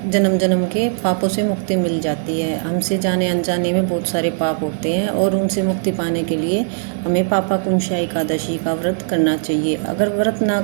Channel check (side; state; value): left; silent; 67 dB below the other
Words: जन्म जन्म के पापों से मुक्ति मिल जाती है। हमसे जाने अनजाने में बहुत सारे पाप होते हैं और उनसे मुक्ति पाने के लिए हमें पापाकुंशा एकादशी का व्रत करना चाहिए। अगर व्रत ना